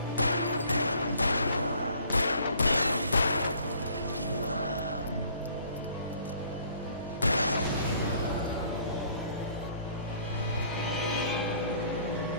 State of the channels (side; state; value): both; inverted; correlation -0.58